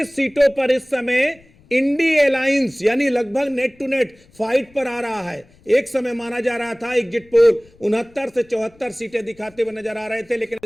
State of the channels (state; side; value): noise; left; rumble, 29 dB below the sound